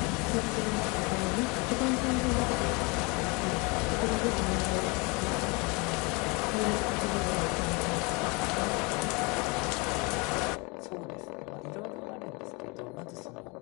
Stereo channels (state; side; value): quieter; right; 28.5 dB